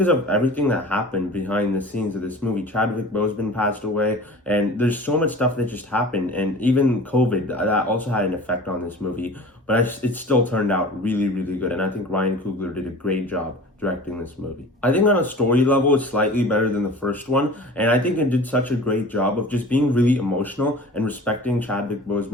of everything that happened behind the scenes of this movie. Chadwick Boseman passed away, and there's so much stuff that just happened, and even COVID, that also had an effect on this movie, but it still turned out really, really good, and I think Ryan Coogler did a great job directing this movie. I think on a story level, it's slightly better than the first one, and I think it did such a great job of just being really emotional and respecting Chadwick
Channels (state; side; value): normal; both; correlation 0.40